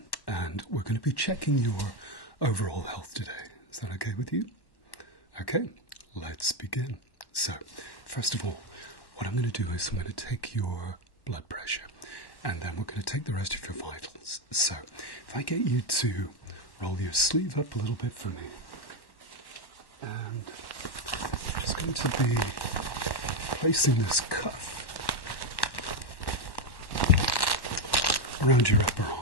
and we're going to be checking your overall health today. Is that okay with you? Okay, let's begin. So, first of all, what I'm going to do is I'm going to take your blood pressure, and then we're going to take the rest of your vitals. So, if I get you to roll your sleeve up a little bit for me, and I'm just going to be placing this cuff around your upper arm.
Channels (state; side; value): late; right; 1.1 ms